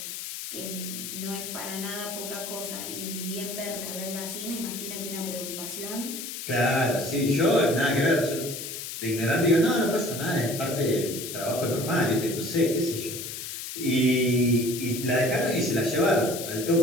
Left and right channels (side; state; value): left; noise; hiss, 7 dB below the sound